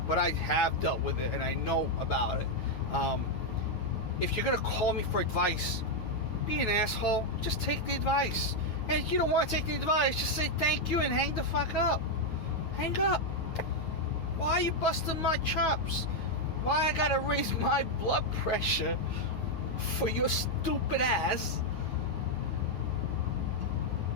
But I have dealt with it, and I know about it. If you're going to call me for advice, be an asshole. Just take the advice. And if you don't want to take the advice, just say thank you and hang the fuck up. Hang up. Why are you busting my chops? Why I gotta raise my blood pressure for your stupid ass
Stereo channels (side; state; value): right; late; 9.4 ms